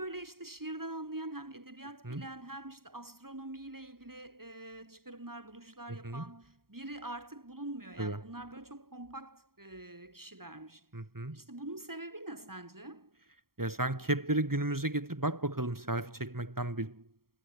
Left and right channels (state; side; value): late; left; 0.93 ms